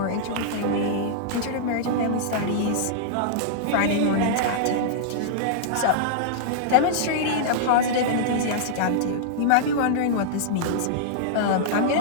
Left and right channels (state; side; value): different; both; correlation -0.02